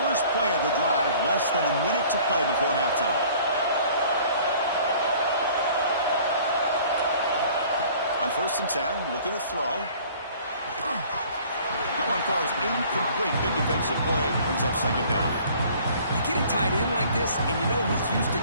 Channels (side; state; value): both; inverted; correlation -0.52